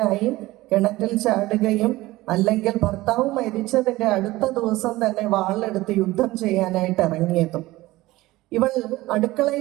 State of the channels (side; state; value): left; quieter; 18.4 dB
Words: കിണറ്റിൽ ചാടുകയും അല്ലെങ്കിൽ ഭർത്താവ് മരിച്ചതിൻ്റെ അടുത്ത ദിവസം തന്നെ വാളെടുത്ത് യുദ്ധം ചെയ്യാനായിട്ട് ഇറങ്ങിയതും. ഇവൾ